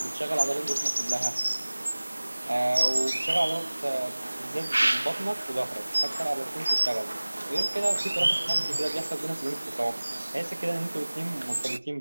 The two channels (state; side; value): inverted; both; correlation -1.00